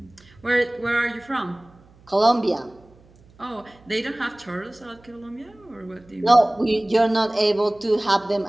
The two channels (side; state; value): right; noise; hum, 28 dB below the sound